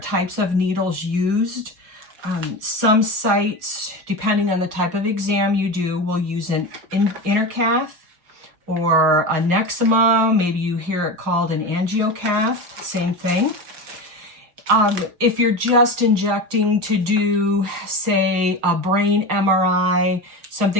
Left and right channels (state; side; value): late; left; 5.8 ms